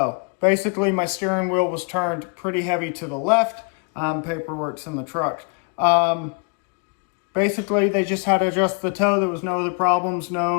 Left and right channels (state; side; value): quieter; right; 36.4 dB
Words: Basically, my steering wheel was turned pretty heavy to the left. Paperwork's in the truck. Basically, they just had to adjust the toe. There was no other problems,